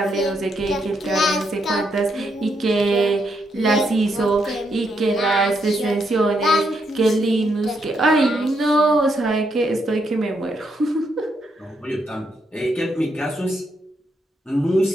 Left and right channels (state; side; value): normal; both; correlation 0.78